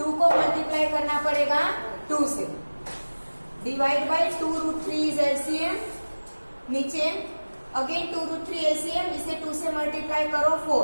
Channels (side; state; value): both; inverted; correlation -1.00